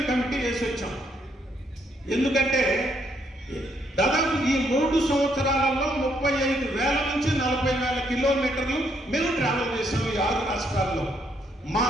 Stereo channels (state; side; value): normal; both; correlation 0.73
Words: కమిటీ వేసి వచ్చాం. ఎందుకంటే దాదాపు ఈ 3 సంవత్సరాలలో 35,000 నుంచి 40,000 కిలోమీటర్లు మేము ట్రావెల్ చేసాం. ఈ 6 రాష్ట్రాల్లో మా